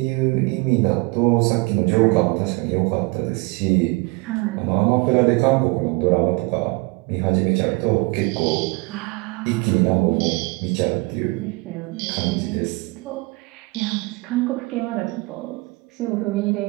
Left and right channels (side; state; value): left; quieter; 26.2 dB